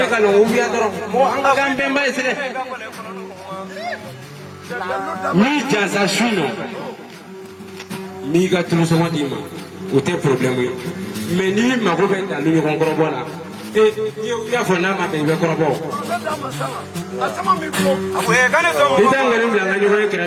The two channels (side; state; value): both; identical; correlation 1.00